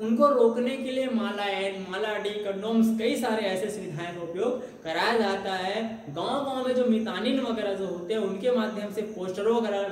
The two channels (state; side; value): identical; both; correlation 1.00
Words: उनको रोकने के लिए माला डी कंडोम्स कई सारे ऐसे सुविधाएं का उपयोग कराया जाता है। गांव-गांव में जो मितानिन वगैरह जो होते हैं उनके माध्यम से पोस्टरों वगैरह